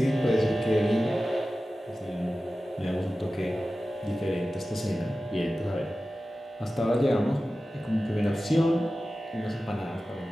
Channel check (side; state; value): both; normal; correlation 0.95